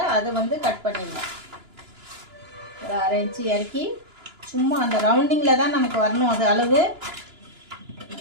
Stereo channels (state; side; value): late; left; 2.9 ms